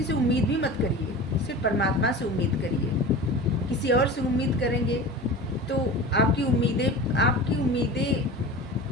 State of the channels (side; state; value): both; normal; correlation 0.34